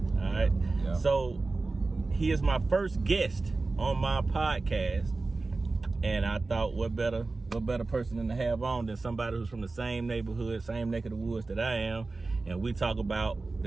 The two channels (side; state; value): left; quieter; 3.6 dB